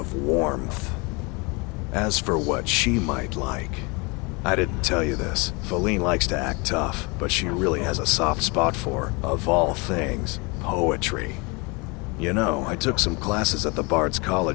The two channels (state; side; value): quieter; right; 28.6 dB